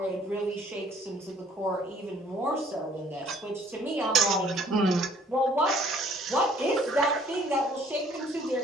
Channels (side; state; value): both; normal; correlation 0.59